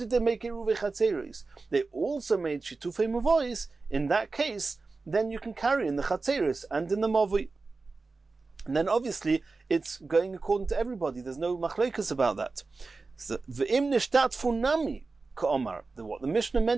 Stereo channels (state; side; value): quieter; left; 3.9 dB